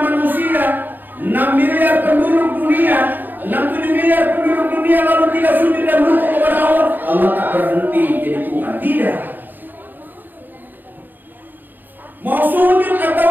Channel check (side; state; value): left; late; 0.090 ms